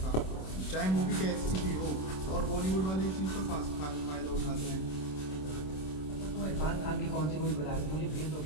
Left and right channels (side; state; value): right; late; 26 ms